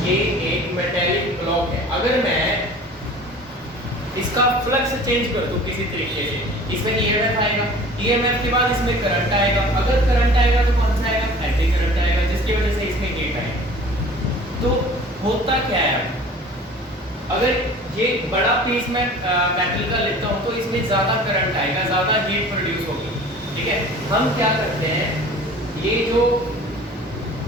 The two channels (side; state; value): both; normal; correlation 0.45